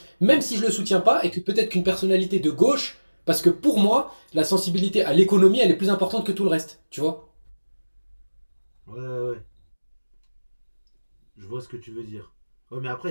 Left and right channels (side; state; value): both; inverted; correlation -1.00